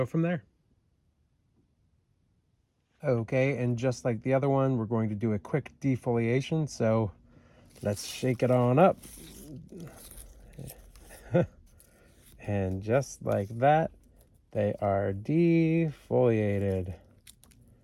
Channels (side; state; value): both; identical; correlation 1.00